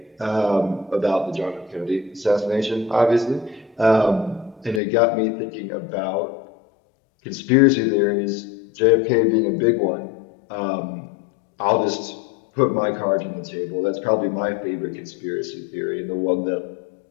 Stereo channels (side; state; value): right; drops out; at 4.8 s